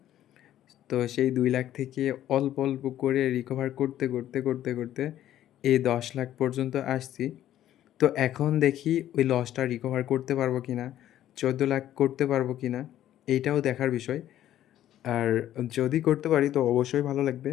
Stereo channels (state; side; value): quieter; right; 12.2 dB